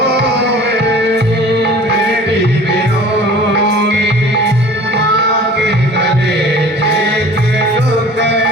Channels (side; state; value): both; normal; correlation 0.45